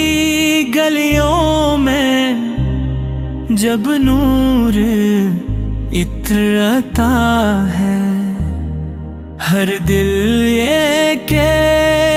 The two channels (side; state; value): both; identical; correlation 1.00